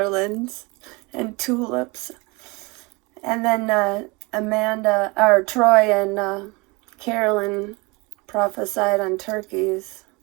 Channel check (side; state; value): left; quieter; 26.2 dB